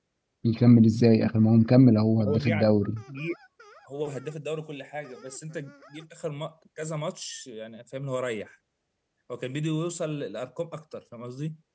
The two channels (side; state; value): both; identical; correlation 1.00